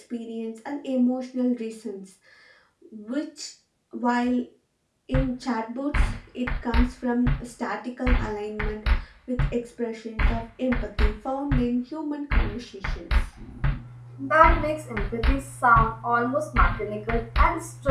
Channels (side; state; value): both; identical; correlation 1.00